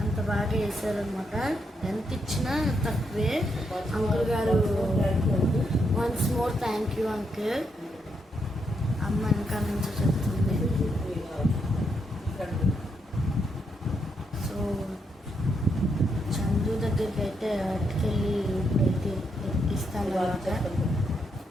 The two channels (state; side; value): normal; both; correlation 0.79